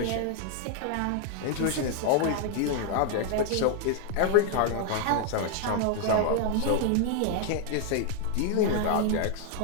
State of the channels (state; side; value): different; both; correlation 0.00